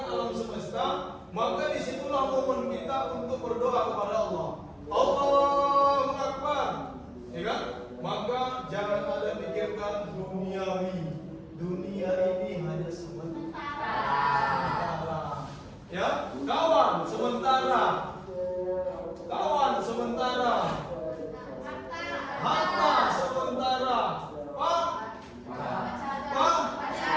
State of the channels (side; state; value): both; identical; correlation 1.00